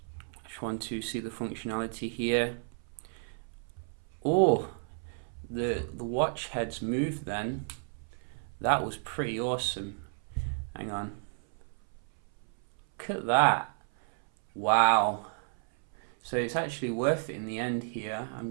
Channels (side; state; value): left; silent; 56 dB below the other